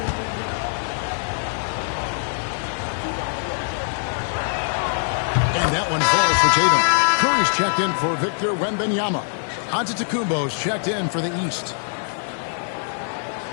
Tatum. Curry's checked in for Victor Wembanyama. Antetokounmpo's checked in for the East.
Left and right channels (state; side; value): silent; right; 57 dB below the other